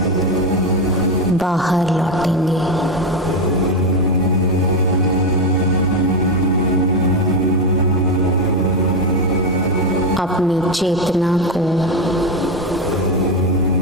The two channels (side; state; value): both; normal; correlation 0.10